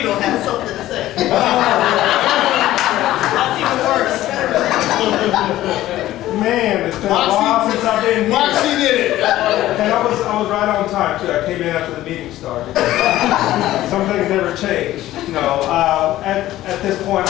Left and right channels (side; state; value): right; quieter; 14.8 dB